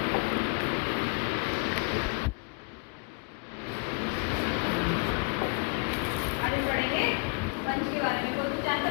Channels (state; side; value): quieter; right; 36.2 dB